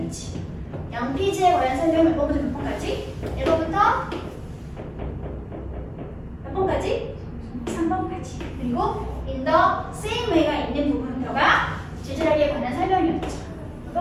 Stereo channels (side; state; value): both; identical; correlation 1.00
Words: 양피지에 관한 설명을 몇 번부터 몇 번까지? 1번부터 몇 번까지? 이렇게까지. 그리고 in the same way가 있는 부분표가 지질학에 관한 설명이었죠.